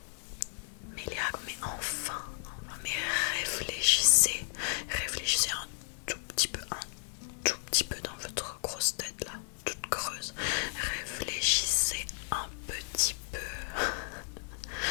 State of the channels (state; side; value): silent; right; digital silence